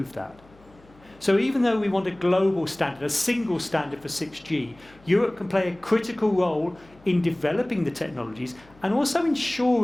that. So even though we want a global standard, a single standard for 6G, Europe can play a critical role in developing the technologies and also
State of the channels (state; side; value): noise; left; hum, 27 dB below the sound